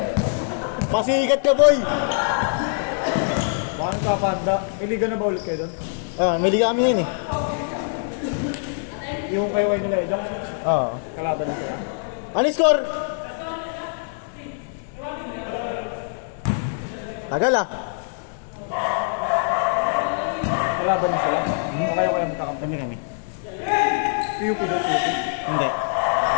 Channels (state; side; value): silent; right; digital silence